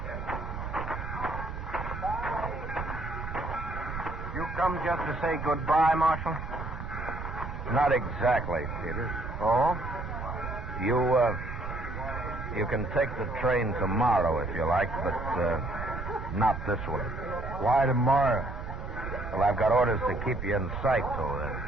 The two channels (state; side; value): noise; right; rumble, 7 dB below the sound